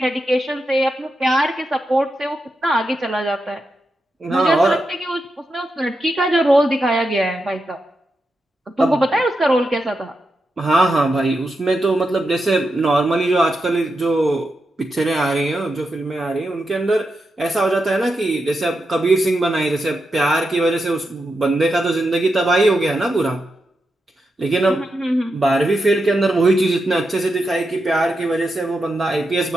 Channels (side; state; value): both; normal; correlation 0.87